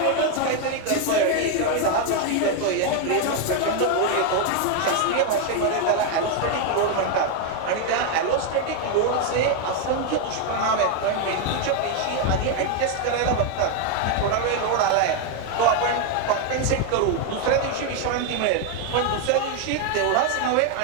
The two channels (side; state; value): both; different; correlation 0.01